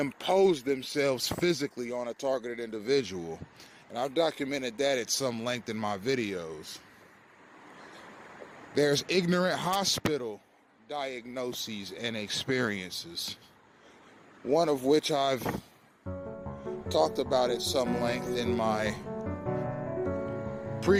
themselves physically on a targeted individual. And I've documented that at some length in my videos. There's ignorant hospital diagnoses and experiences, one of which I've talked about at some length in my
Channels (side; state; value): both; identical; correlation 1.00